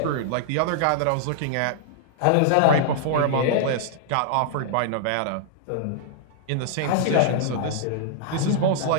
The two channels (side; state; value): both; different; correlation -0.01